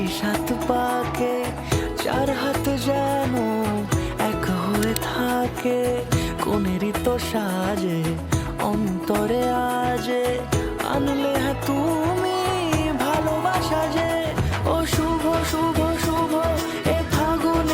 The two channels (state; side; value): identical; both; correlation 1.00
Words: 7 পাকে, 4 হাত যেন এক হয়ে থাকে। কোনেরই তো সাজে অন্তরে আজে, আনলে হ্যাঁ তুমি ভালোবাসা যে। ও শুভ শুভ শুভ এ